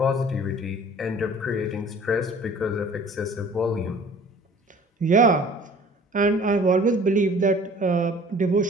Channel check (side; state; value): both; normal; correlation 0.49